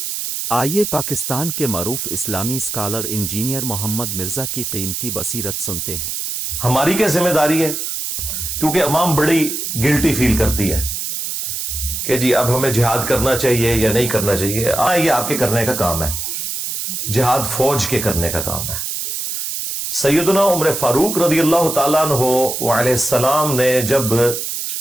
آئیے پاکستان کے معروف اسلامی اسکالر انجینئر محمد مرزا کی قیمتی بصیرت سنتے ہیں۔ ہماری کیا ذمہ داری ہے؟ کیونکہ عوام بڑی گلٹی فیل کرتی ہے کہ جی اب ہمیں جہاد کرنا چاہیے یا نہیں کرنا چاہیے۔ یہ آپ کے کرنے کا کام ہے، جہاد فوج کے کرنے کا کام ہے۔ سیدنا عمر فاروق رضی اللہ تعالیٰ عنہ علیہ السلام نے جب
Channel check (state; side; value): noise; right; hiss, 4 dB below the sound